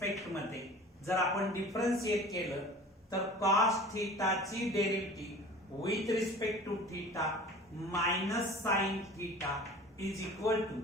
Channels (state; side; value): normal; both; correlation 0.41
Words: मध्ये जर आपण डिफरन्शिएट केलं तर कॉस थीटाची derivative with respect to theta minus sine theta is equal to